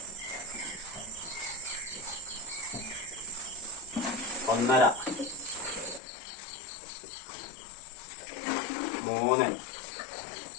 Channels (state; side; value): drops out; right; at 6.0 s